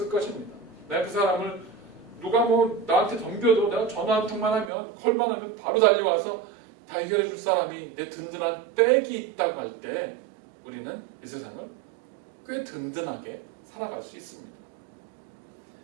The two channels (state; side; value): drops out; left; at 4.7 s